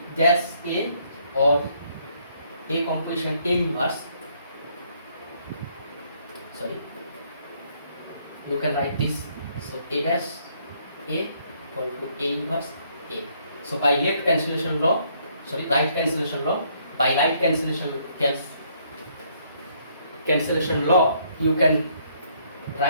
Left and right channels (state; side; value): inverted; both; correlation -0.68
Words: dash A, or A composition A inverse, sorry, you can write this. So A dash A equal to A inverse A. So by left cancellation law, sorry, right cancellation law, by right cancellation law, you can